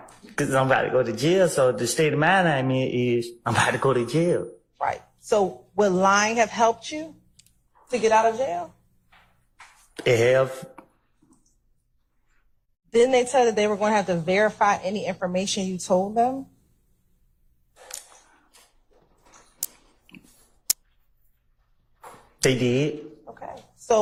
Because I'm about to go to jail. So the state of mind I'm in is I'm about to go to jail. Right. So would lying have helped you to get out of jail? It have. Didn't they tell that they were going to have to verify any information you told them? They did. Okay.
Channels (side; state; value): both; identical; correlation 1.00